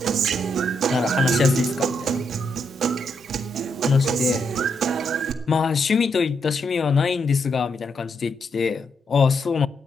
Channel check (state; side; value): normal; both; correlation 0.79